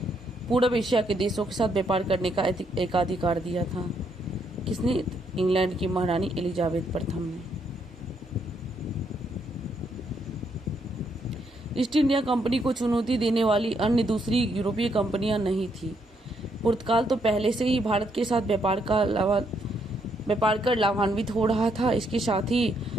पूर्व एशिया के देशों के साथ व्यापार करने का एकाधिकार दिया था। किसने? इंग्लैंड की महारानी एलिजाबेथ प्रथम ने। ईस्ट इंडिया कंपनी को चुनौती देने वाली अन्य दूसरी यूरोपीय कंपनियां नहीं थी। पुर्तगाल तो पहले से ही भारत के साथ व्यापार कर लाभान्वित हो रहा था। इसके साथ ही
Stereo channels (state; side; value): normal; both; correlation 0.75